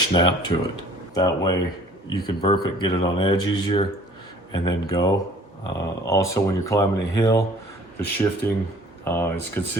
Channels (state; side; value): normal; both; correlation 0.52